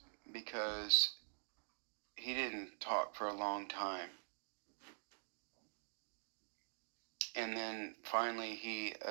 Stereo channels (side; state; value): left; silent; digital silence